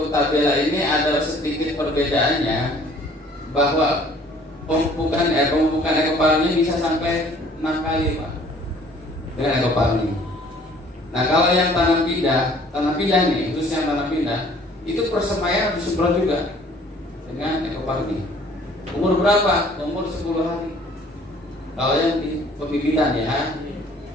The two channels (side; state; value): both; normal; correlation 0.55